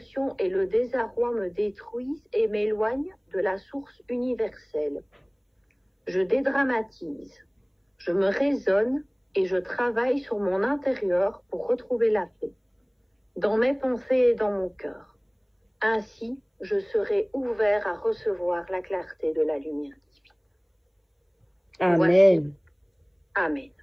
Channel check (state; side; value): identical; both; correlation 1.00